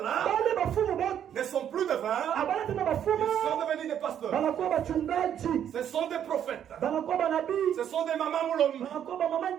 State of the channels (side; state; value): left; quieter; 9.6 dB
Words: ne sont plus devins. devins, abana tena bafuma ils sont devenus des pasteurs. banakuwa bachungaji Ce sont des prophètes. banakuwa banabii Ce sont des mamans moulombi. banakuwa bamama